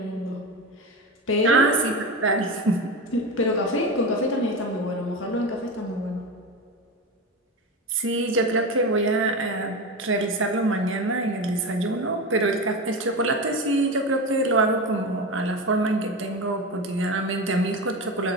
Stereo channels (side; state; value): both; normal; correlation 0.21